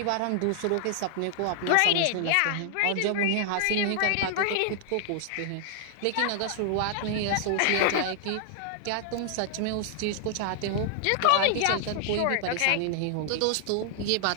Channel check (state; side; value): different; both; correlation -0.01